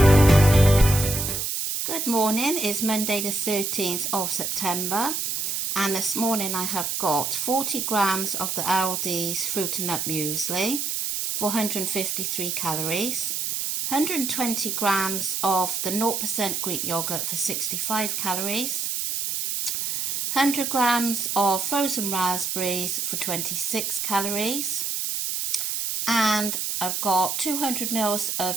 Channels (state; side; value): noise; right; hiss, 1 dB below the sound